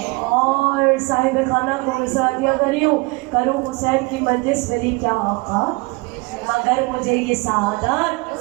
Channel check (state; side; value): quieter; left; 26.2 dB